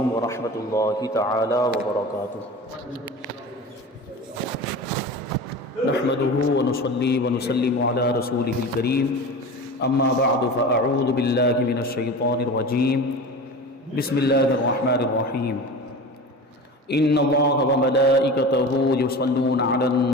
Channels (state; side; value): normal; both; correlation 0.32